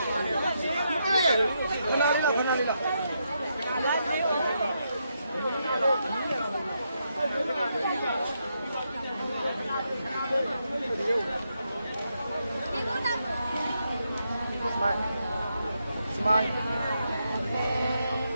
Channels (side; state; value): both; inverted; correlation -0.81